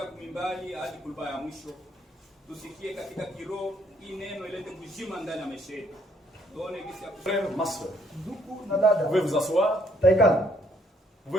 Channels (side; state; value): both; normal; correlation 0.67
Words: kumimbali hadi kulba ya mwisho. Tusikie katika kiroho hii neno ilete kuzima ndani ya maisha yetu. Tuone kisi ya frère, ma soeur. Vous pouvez vous asseoir. Vous